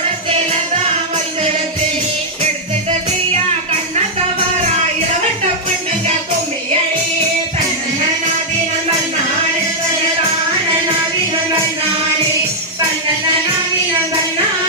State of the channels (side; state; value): both; normal; correlation -0.05